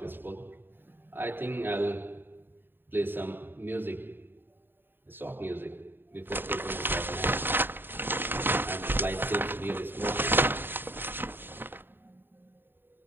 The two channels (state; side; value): late; left; 0.097 ms